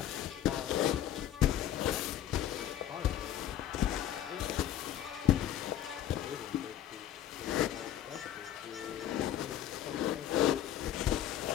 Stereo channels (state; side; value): quieter; right; 11.2 dB